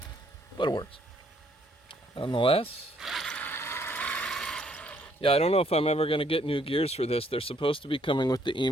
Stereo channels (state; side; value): normal; both; correlation 0.67